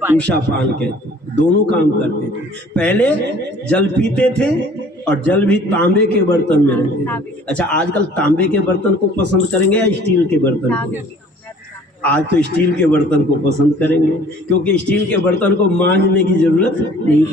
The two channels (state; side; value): normal; both; correlation 0.52